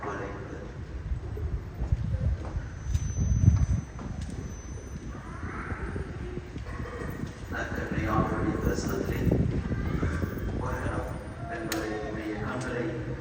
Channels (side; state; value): both; identical; correlation 1.00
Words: கொலை நற்கருணையாளருடைய பிரசனத்திலே வருகிறோம் என்பதை உடைய கண்களை